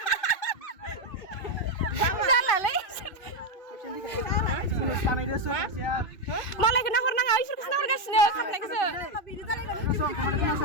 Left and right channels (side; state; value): right; late; 2.5 ms